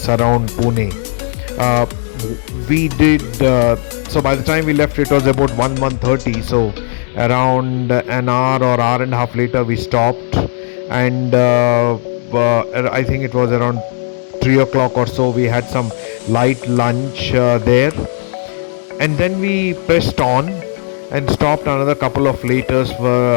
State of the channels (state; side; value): silent; right; digital silence